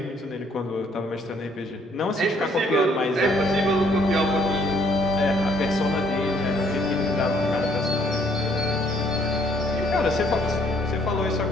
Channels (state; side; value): normal; both; correlation 0.64